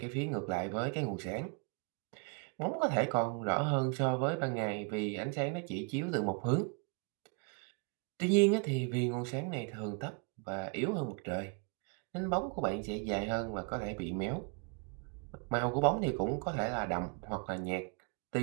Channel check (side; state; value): left; quieter; 34.2 dB